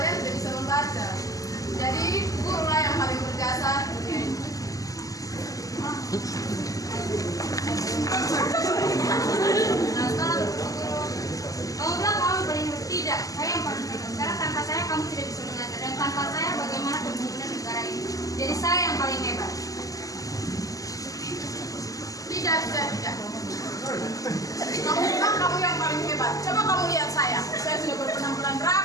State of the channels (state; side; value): late; right; 0.17 ms